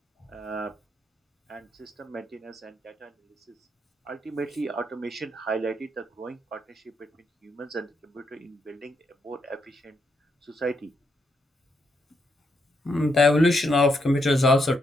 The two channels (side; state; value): both; normal; correlation 0.79